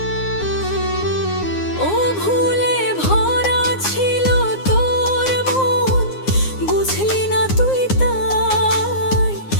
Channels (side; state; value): right; late; 9.6 ms